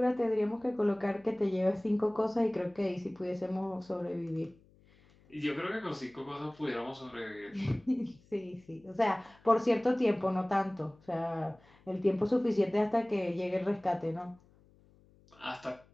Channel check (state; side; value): noise; left; hum, 29 dB below the sound